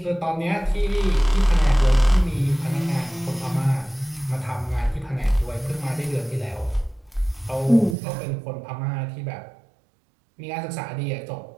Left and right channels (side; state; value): left; drops out; at 8.0 s